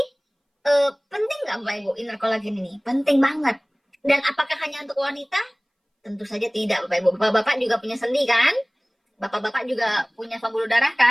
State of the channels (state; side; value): identical; both; correlation 1.00